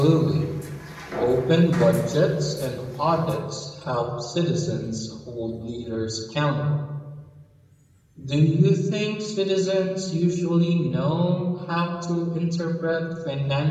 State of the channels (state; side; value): identical; both; correlation 1.00